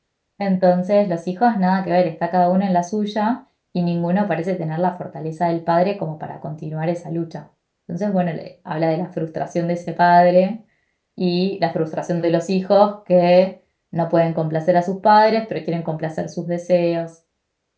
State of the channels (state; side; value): identical; both; correlation 1.00